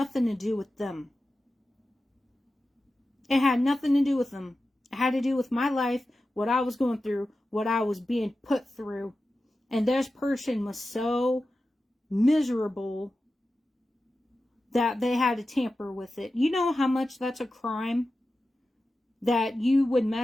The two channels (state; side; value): normal; both; correlation 0.93